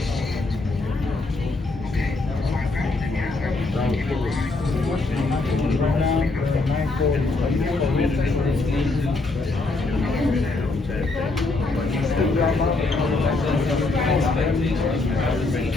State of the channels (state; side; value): quieter; right; 3.3 dB